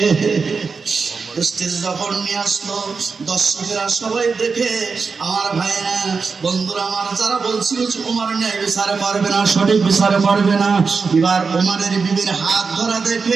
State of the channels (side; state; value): left; quieter; 4.9 dB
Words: যখন নিয়ে আসলো দর্শকেরা সবাই দেখে, আমার ভাইরা বন্ধুরা আমার যারা বলছিল ওমর ন্যায় বিচার করবে না, সঠিক বিচার করবে না, এবার ওমরের বিবির হাত ধরা